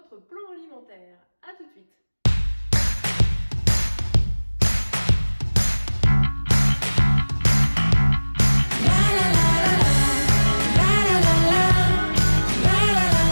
plan alimentaire. A tout de suite.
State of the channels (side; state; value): both; inverted; correlation -1.00